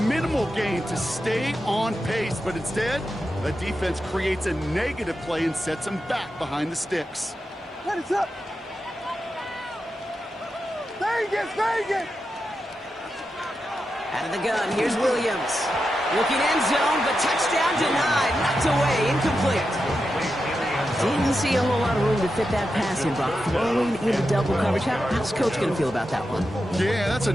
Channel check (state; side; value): normal; both; correlation 0.89